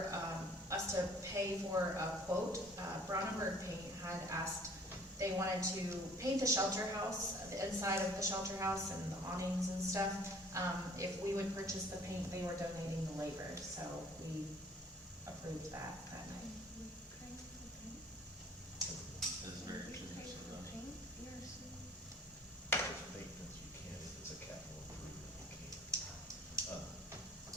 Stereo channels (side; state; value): both; normal; correlation 0.54